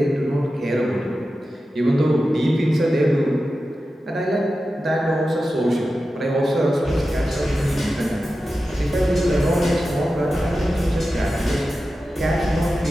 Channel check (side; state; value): both; normal; correlation 0.93